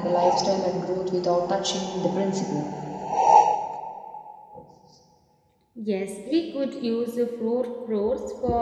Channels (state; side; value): identical; both; correlation 1.00